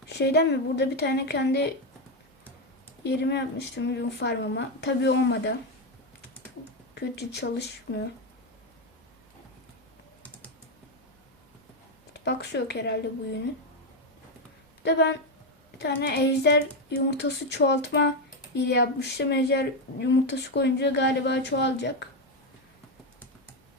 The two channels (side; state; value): both; normal; correlation 0.07